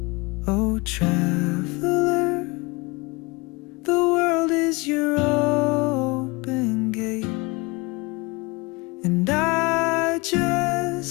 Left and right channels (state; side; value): quieter; right; 25.7 dB